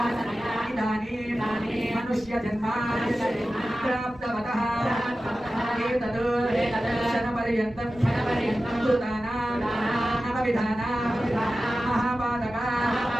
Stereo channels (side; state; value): both; normal; correlation 0.94